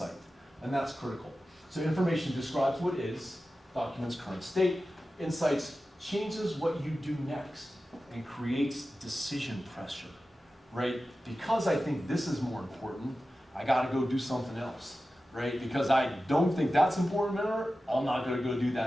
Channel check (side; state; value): both; normal; correlation 0.94